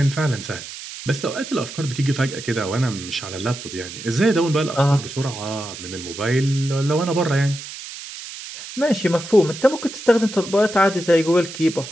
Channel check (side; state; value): right; noise; hiss, 12 dB below the sound